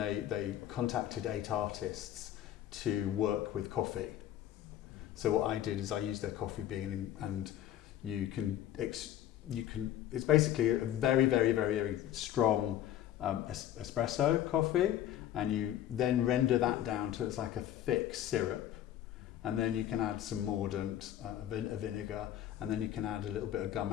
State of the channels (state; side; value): quieter; right; 11.9 dB